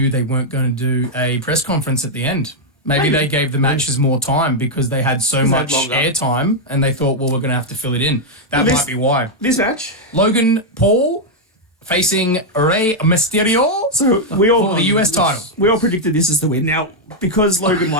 they weren't going to do a press conference at the end. Maybe they gave the matches more time because they had so they had much longer. airtime and they thought, well, we're going to have to fill it in. That Well, this- might be why. This match. Logan Paul facing Rey Mysterio So we all for the US title. We all predicted this as the win. Now, because Logan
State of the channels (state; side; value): normal; both; correlation -0.02